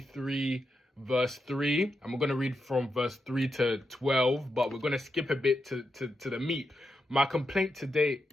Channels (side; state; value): both; normal; correlation 0.86